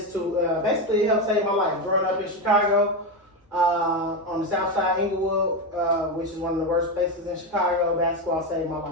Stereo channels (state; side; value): normal; both; correlation 0.12